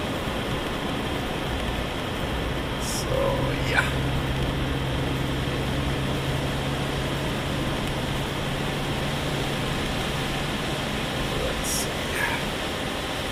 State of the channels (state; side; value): identical; both; correlation 1.00